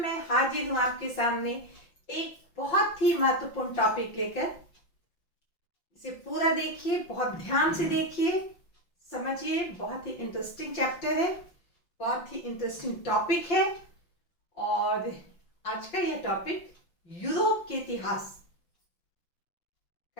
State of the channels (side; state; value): right; late; 5.7 ms